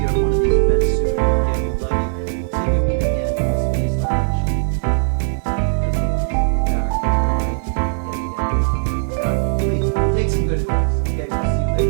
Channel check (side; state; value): left; silent; digital silence